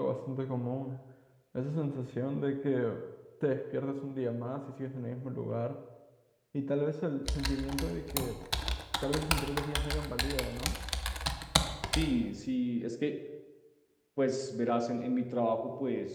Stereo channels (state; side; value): identical; both; correlation 1.00